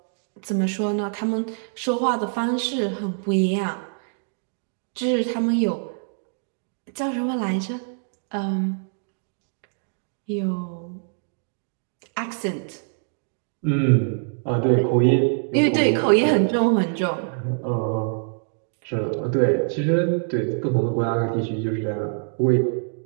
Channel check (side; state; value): left; silent; 62 dB below the other